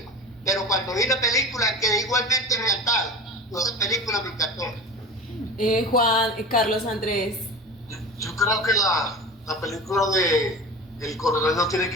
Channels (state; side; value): normal; both; correlation 0.31